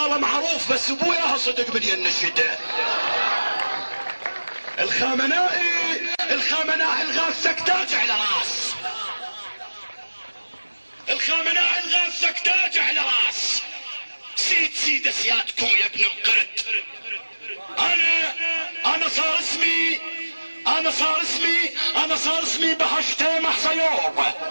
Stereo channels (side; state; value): both; inverted; correlation -1.00